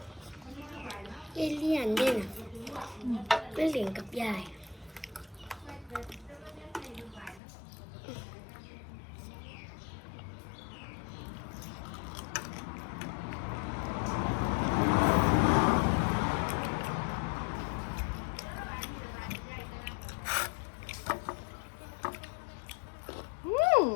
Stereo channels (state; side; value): drops out; right; at 7.4 s